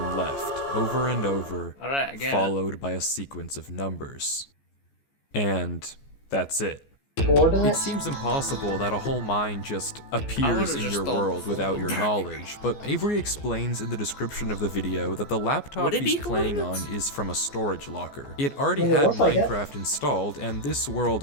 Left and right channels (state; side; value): late; right; 14 ms